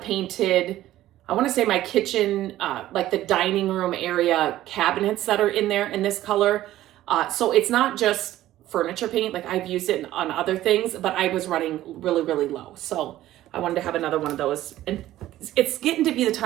I want to say my kitchen, like the dining room area cabinets that are in there in this color. So it's not just furniture paint, like I've used it on other things, but I was running really, really low. So I wanted to have another one of those. And it's getting to be the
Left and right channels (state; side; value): quieter; left; 14.3 dB